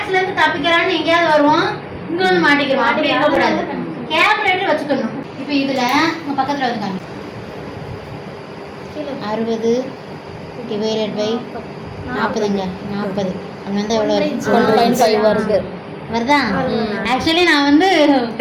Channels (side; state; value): both; identical; correlation 1.00